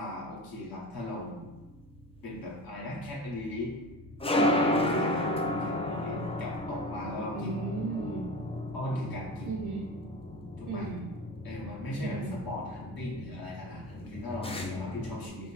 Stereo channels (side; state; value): right; noise; hum, 23 dB below the sound